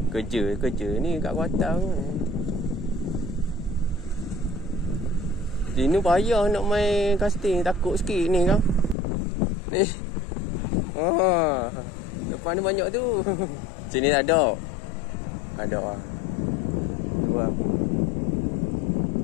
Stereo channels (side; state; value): right; drops out; at 9.0 s